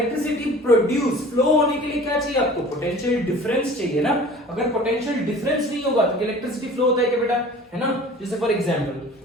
produce, flow होने के लिए क्या चाहिए आपको, पोटेंशियल डिफरेंस चाहिए ना। अगर पोटेंशियल डिफरेंस नहीं होगा तो इलेक्ट्रिसिटी फ्लो होता है क्या बेटा, है ना। जैसे फॉर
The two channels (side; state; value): both; normal; correlation 0.44